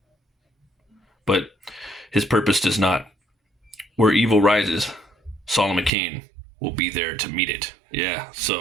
But his purpose does not. Where evil rises, Solomon Kane will be there to meet it. Yeah,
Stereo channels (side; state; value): left; drops out; at 5.9 s